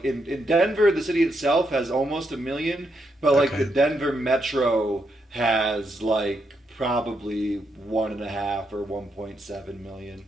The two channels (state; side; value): normal; both; correlation 0.80